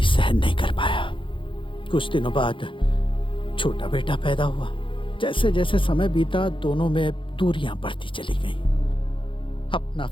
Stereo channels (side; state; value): right; late; 0.25 ms